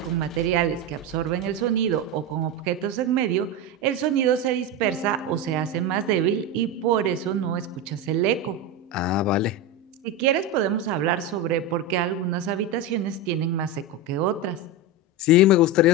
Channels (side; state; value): both; normal; correlation 0.16